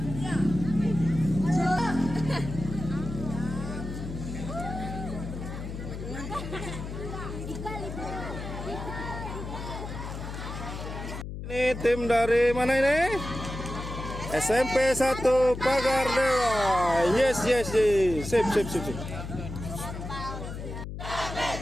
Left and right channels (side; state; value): left; noise; hum, 8 dB below the sound